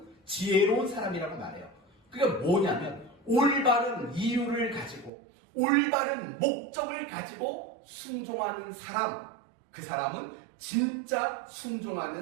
지혜로운 사람이라고 말해요. 그게 뭐냐면 올바른 이유를 가지고 올바른 목적을 가지고 순종하는 사람, 그 사람은 진짜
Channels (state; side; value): drops out; left; at 5.1 s